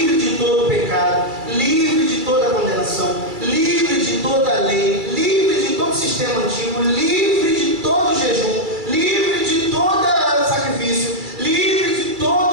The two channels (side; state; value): left; late; 2.3 ms